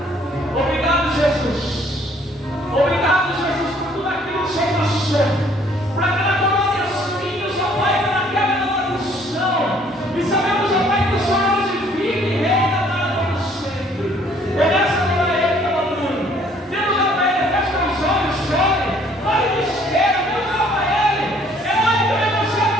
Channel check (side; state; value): both; normal; correlation 0.60